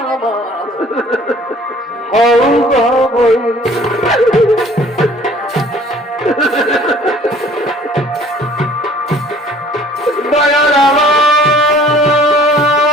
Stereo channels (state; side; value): normal; both; correlation 0.53